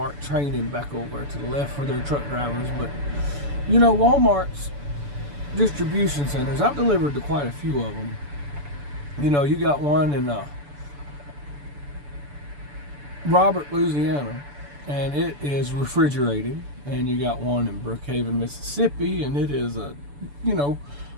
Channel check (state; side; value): late; left; 6.9 ms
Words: training back over to the left for their truck drivers. But, Walmart's distribution centers, I've delivered to quite a few of them. You got one in Robert, Louisiana, and it is refrigerated. And you got one in Brookhaven, Mississippi, and it is a,